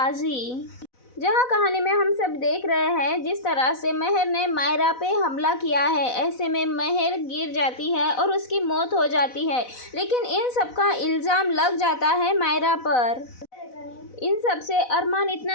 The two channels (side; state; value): right; late; 4.0 ms